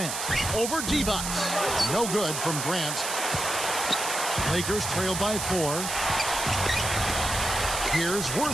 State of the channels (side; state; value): right; noise; hiss, 4 dB below the sound